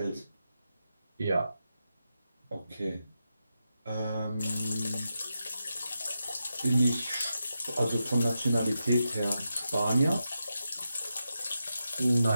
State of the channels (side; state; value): both; inverted; correlation -0.88